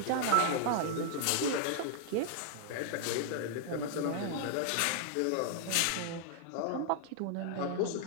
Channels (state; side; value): different; both; correlation 0.00